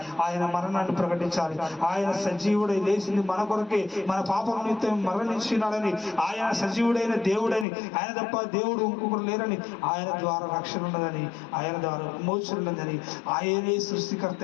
ఆయన మరణాన్ని ప్రకటించాలి. ఆయన సజీవుడై లేచింది మన కొరకే, మన పాపం నిమిత్తం మరణించినాడని, ఆయన సజీవుడైన దేవుడని, ఆయన తప్ప దేవుడు ఇంకొకరు లేరని, ఆయన ద్వారా రక్షణ ఉన్నదని, ఆయన ద్వారా విమోచన ఉన్నదని, ఆయనే సృష్టికర్త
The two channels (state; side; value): drops out; right; at 7.7 s